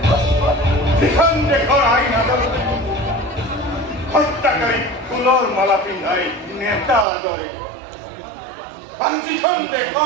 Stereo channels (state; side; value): drops out; left; at 7.1 s